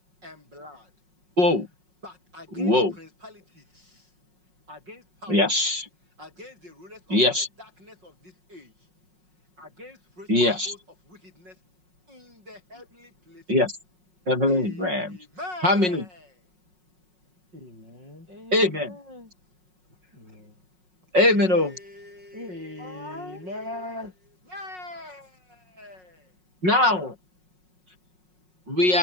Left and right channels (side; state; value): left; late; 5.5 ms